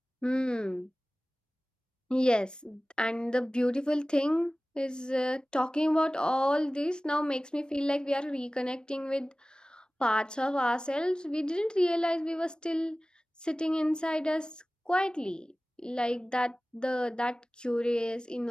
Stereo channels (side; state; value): both; normal; correlation 0.97